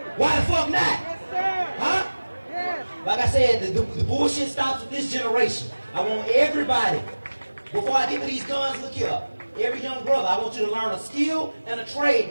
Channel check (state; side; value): inverted; both; correlation -1.00